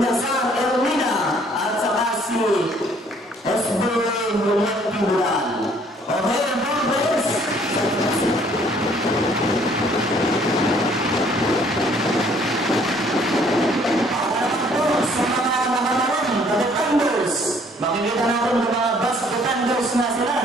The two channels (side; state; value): both; normal; correlation 0.60